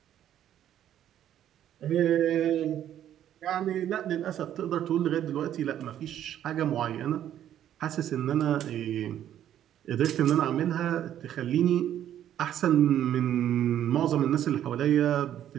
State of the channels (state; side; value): quieter; left; 11.0 dB